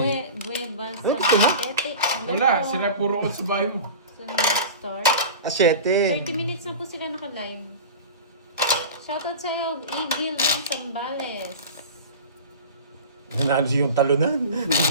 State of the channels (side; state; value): both; inverted; correlation -0.33